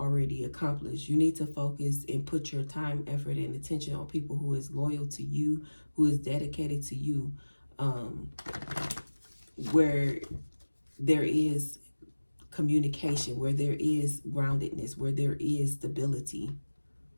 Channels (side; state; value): both; inverted; correlation -1.00